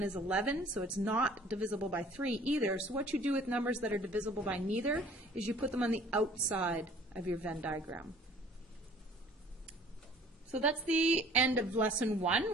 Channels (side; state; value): both; normal; correlation 0.52